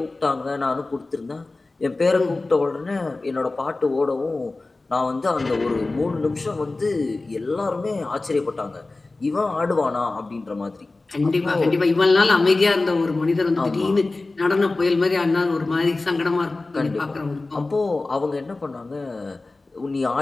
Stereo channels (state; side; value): quieter; right; 3.3 dB